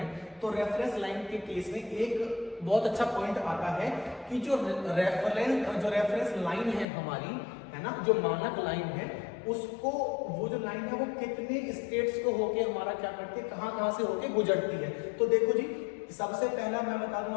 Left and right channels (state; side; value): drops out; right; at 6.9 s